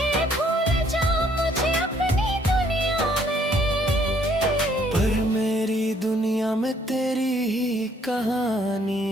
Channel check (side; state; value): both; normal; correlation 0.65